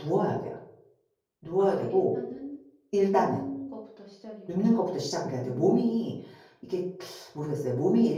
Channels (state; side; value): identical; both; correlation 1.00